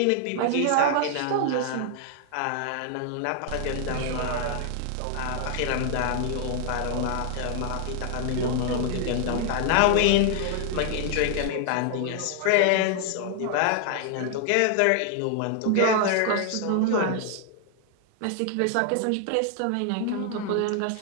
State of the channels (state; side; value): different; both; correlation 0.00